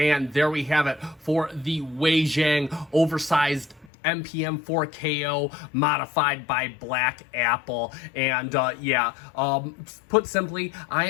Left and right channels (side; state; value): right; drops out; at 3.9 s